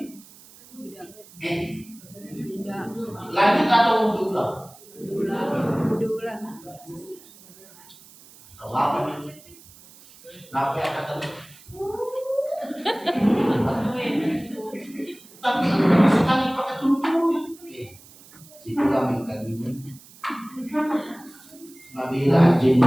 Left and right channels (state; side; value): noise; right; hiss, 23 dB below the sound